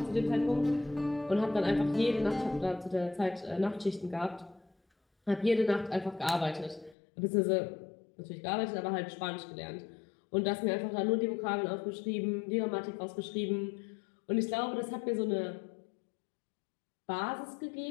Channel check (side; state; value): right; drops out; at 7.0 s